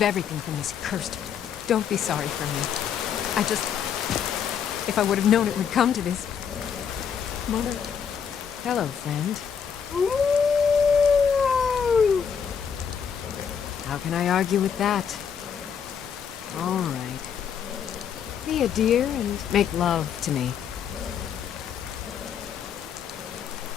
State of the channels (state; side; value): quieter; right; 7.5 dB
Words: everything from this cursed... Don't be sorry for me. I just... If I would have known it would come to this... Mother... Hello, friend. How can I argue with that? All right. Be a dear and make love to me.